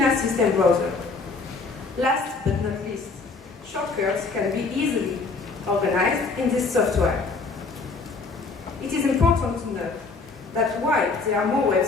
system browser. Last but not least, shortcuts can be easily organized in this software. It is important to note that while there are more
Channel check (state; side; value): quieter; right; 4.1 dB